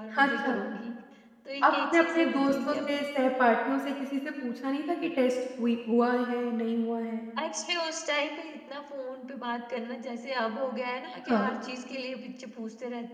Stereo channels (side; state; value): both; identical; correlation 1.00